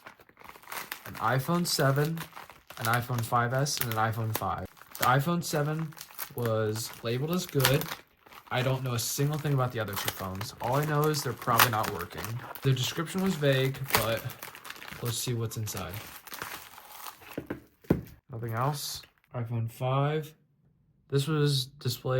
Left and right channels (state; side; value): identical; both; correlation 1.00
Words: An iPhone 7, an iPhone 5S, and an iPhone 5. The iPhone 7 was labeled as good. I don't know a single thing about the other 2 phones. All I know is they're probably not working. The description was vague, but let's see what's inside. Nothing else. iPhone 5. This was